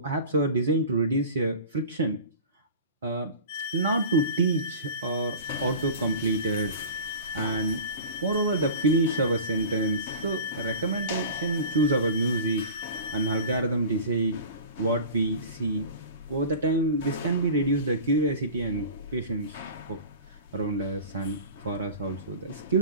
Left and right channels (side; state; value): both; inverted; correlation -0.37